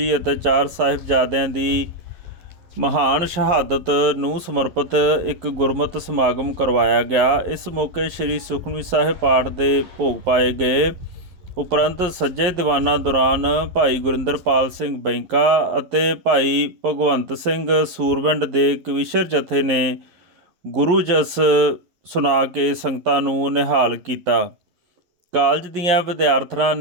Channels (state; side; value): late; left; 11 ms